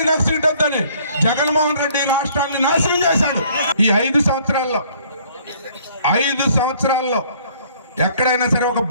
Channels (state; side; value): inverted; both; correlation -0.59